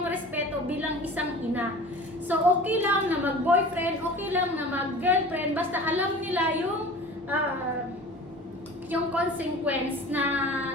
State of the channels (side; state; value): both; normal; correlation 0.40